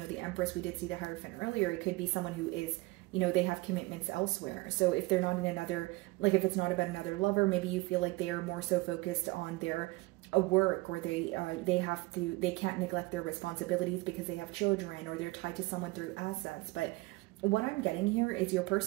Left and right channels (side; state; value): left; quieter; 22.2 dB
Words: the Empress, we did see the Hierophant earlier. It could be someone who is, you know, they have commitments elsewhere. So if they're not in another, like if it's not about another lover, maybe you feel like they are more so focused on their a work, or they can't neglect their responsibilities because they have children, or they're tied to someone through assets. But what I'm getting here is your